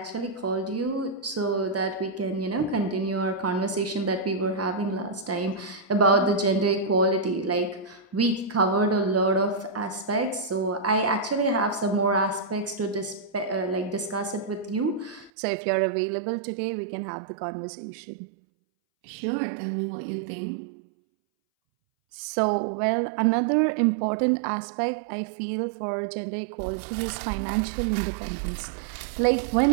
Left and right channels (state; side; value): drops out; left; at 15.3 s